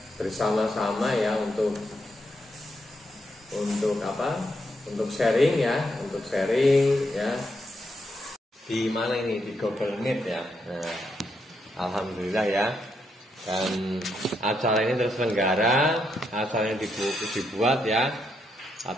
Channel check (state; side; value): normal; both; correlation 0.79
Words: bersama-sama ya untuk apa? Untuk sharing ya, di mana ini, di Google Meet ya. Nah, alhamdulillah ya. Dan acara ini terselenggara, acaranya dibuat ya